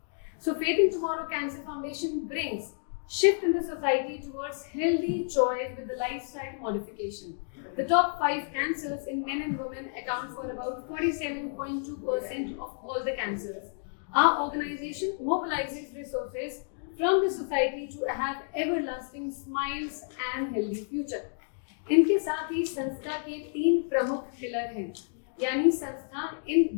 So, Faith in Tomorrow Cancer Foundation brings shift in the society towards healthy choice with the lifestyle modification. The top 5 cancers in men and women account for about 47.2% of all the cancers. Our organization mobilizes resources from the society to have everlasting smiles and healthy future. इनके साथ ही संस्था के 3 प्रमुख pillar हैं, यानी संस्था इन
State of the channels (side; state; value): right; silent; digital silence